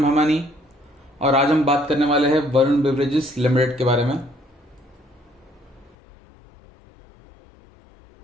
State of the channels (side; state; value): right; drops out; at 6.0 s